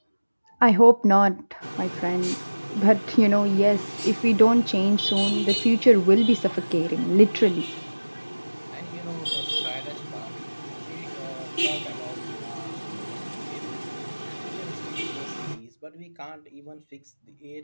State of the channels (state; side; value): inverted; both; correlation -1.00